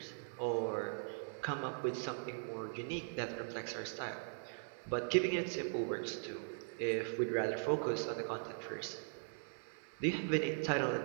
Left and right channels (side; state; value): left; silent; digital silence